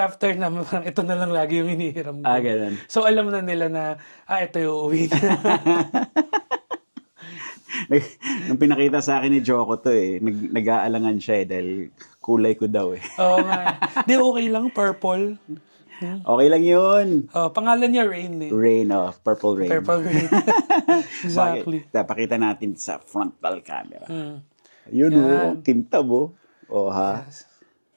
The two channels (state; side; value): inverted; both; correlation -1.00